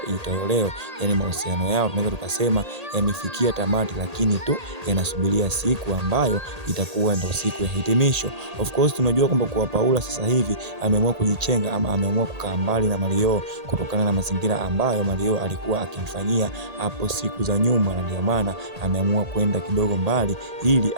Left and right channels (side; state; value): left; late; 1.8 ms